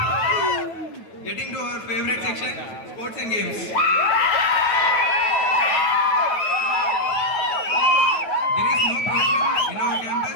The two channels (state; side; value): late; right; 9.2 ms